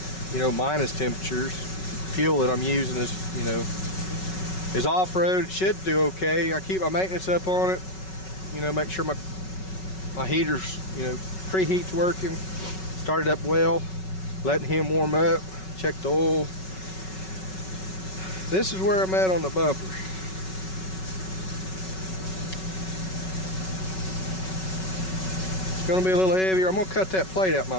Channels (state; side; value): late; right; 5.3 ms